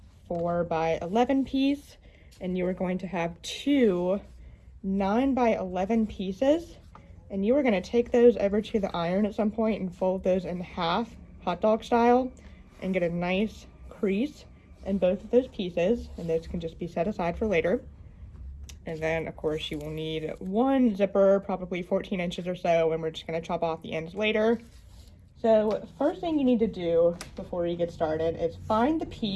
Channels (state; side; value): identical; both; correlation 1.00